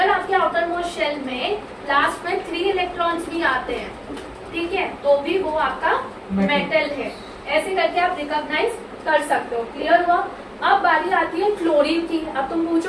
आपके आउटर मोस्ट शेल में लास्ट में 3 इलेक्ट्रॉन्स भी आते हैं, ठीक है, तो भी वो आपका मेटल है. ऐसे करके आप रिकॉग्नाइज कर सकते हो. क्लियर हुआ? अब बारी आती है क्लोरीन की. अब तुम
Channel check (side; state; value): both; identical; correlation 1.00